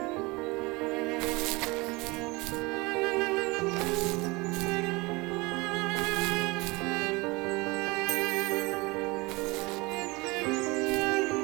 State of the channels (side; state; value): left; quieter; 24.4 dB